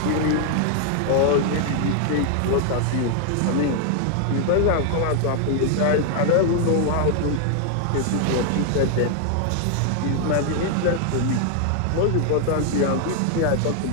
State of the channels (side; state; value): both; different; correlation 0.00